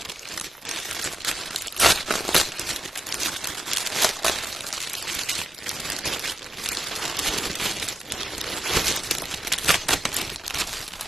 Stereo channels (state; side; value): normal; both; correlation 0.86